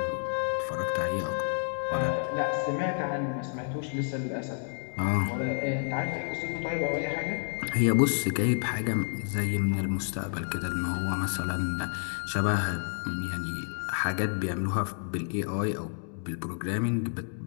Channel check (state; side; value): silent; right; digital silence